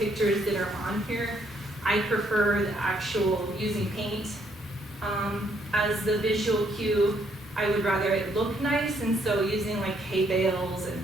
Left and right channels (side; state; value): both; normal; correlation 0.70